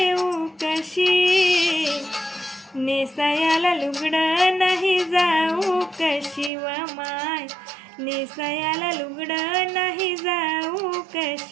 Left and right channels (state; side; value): drops out; left; at 6.5 s